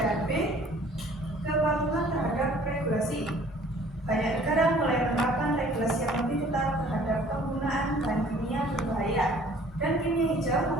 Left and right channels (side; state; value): both; normal; correlation 0.53